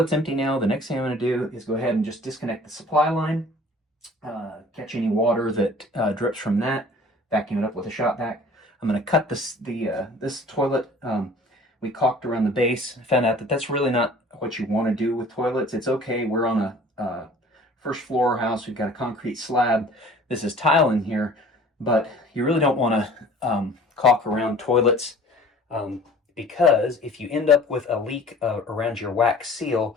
empty now. The next thing I'm going to do is go ahead and just disconnect the supply line, catch any water that drips from that, vacuum it up with a shop vac. I'm going to cut this toilet. We caulked around the base. Found out that that's really not what you want to do with toilets. It's okay. We're on a first floor house. We've got a concrete slab. This is tile in here, but you really don't want to caulk around toilets. Because if you end up with a leak around your wax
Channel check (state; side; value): normal; both; correlation 0.48